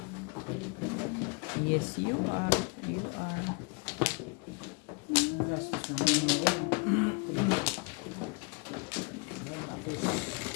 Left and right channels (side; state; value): right; quieter; 30.8 dB